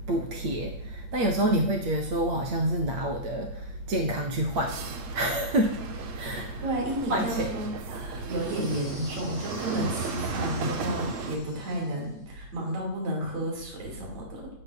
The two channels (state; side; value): late; left; 8.6 ms